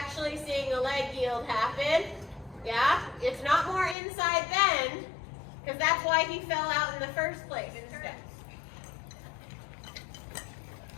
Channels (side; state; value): right; drops out; at 4.0 s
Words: seeing a leg yield happen. Yeah? It's not more inside bend, because that's why he fell out in the first place.